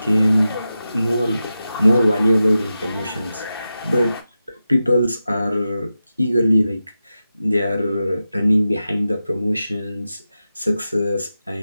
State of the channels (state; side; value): inverted; both; correlation -0.92